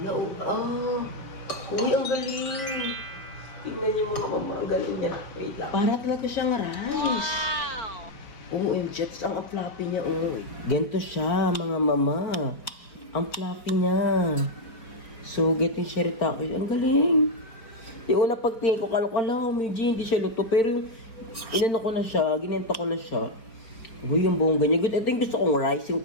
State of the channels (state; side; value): late; right; 4.7 ms